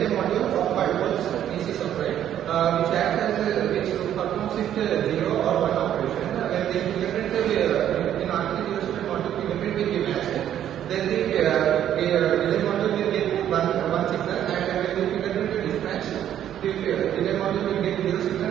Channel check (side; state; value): left; quieter; 10.7 dB